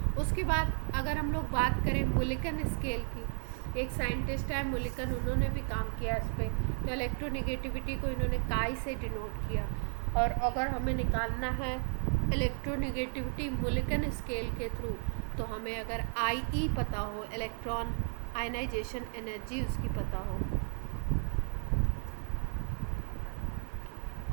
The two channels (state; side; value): silent; left; 55 dB below the other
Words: उसके बाद अगर हम लोग बात करें मुलिकन स्केल की, एक साइंटिस्ट है मुलिकन, उन्होंने भी काम किया इस पर, तो इलेक्ट्रोनिगेटिविटी को इन्होंने काई से डिनोट किया, और अगर हमें निकालना है इलेक्ट्रोनिगेटिविटी मुलिकन स्केल के थ्रू, तो हमें अगर IE पता हो, इलेक्ट्रॉन आयनाइजेशन एनर्जी उसकी पता हो,